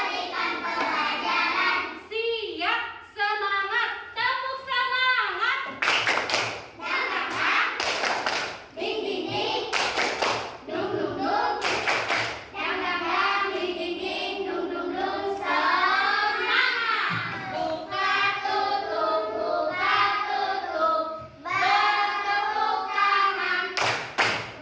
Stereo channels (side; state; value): both; identical; correlation 1.00